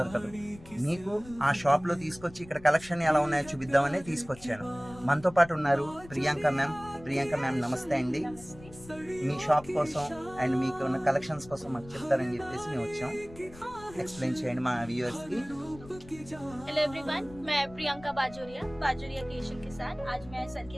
మీకు ఆ షాప్లో తీసుకొచ్చి ఇక్కడ కలెక్షన్ ఎలా ఉన్నాయో చూపిద్దామని తీసుకొచ్చాను. మనతో పాటు ఉన్నారు ప్రియాంక మ్యామ్. ప్రియాంక మ్యామ్ నమస్తే అండి. మీ షాప్ కోసం అండ్ మీకు ఉన్న కలెక్షన్స్ కోసం మాకు చెప్తారని చెప్పేసి మేము వచ్చాం. एक्सप्लेन చేయండి మా వ్యూअर्स की। हेलो एवरीवन, मैं प्रियंका बाजोरिया क्रिएशन के साथ आज मैं सर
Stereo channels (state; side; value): noise; left; rumble, 19 dB below the sound